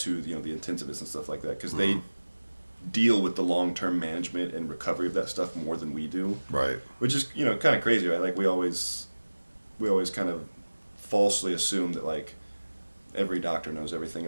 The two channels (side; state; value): both; inverted; correlation -1.00